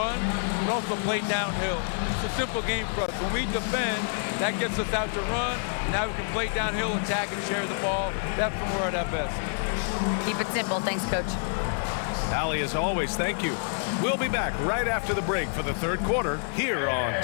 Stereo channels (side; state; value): right; silent; 60 dB below the other